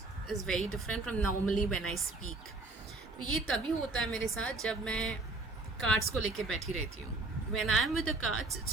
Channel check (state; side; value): quieter; left; 3.2 dB